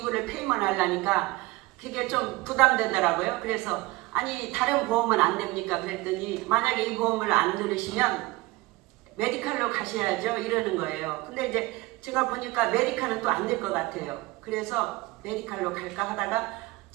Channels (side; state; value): left; quieter; 20.9 dB